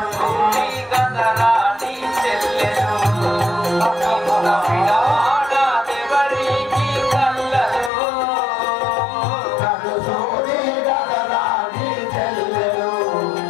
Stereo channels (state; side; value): drops out; right; at 7.9 s